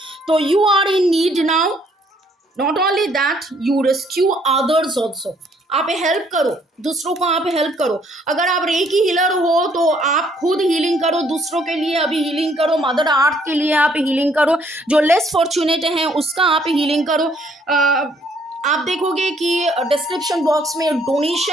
So you are in need now, not only that you rescue others also, आप help करो, दूसरों को आप help करो। अगर आप recce healer हो तो आप खुद हीलिंग करो, दूसरों के लिए अभी हीलिंग करो, मदर अर्थ के लिए आप हीलिंग करो, जो लेस फॉर्चुनेट हैं उसका आप हीलिंग करो। आप देखोगे कि डिस्क्रिप्शन बॉक्स में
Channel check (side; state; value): both; normal; correlation 0.65